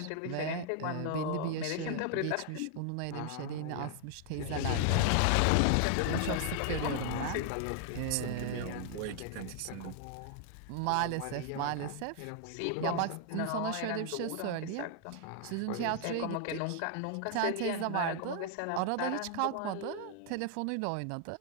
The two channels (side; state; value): both; different; correlation 0.00